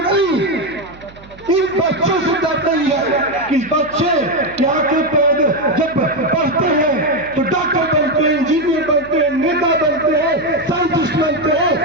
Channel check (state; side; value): noise; right; hum, 22 dB below the sound